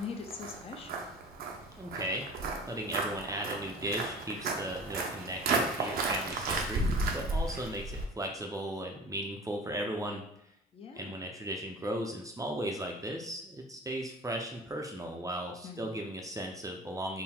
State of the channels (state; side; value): normal; both; correlation 0.40